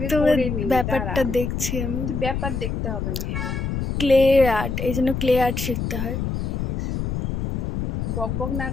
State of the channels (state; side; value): noise; left; rumble, 2 dB below the sound